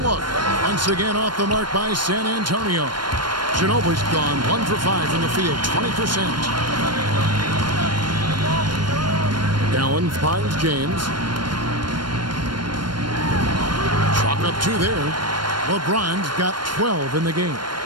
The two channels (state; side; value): late; left; 0.72 ms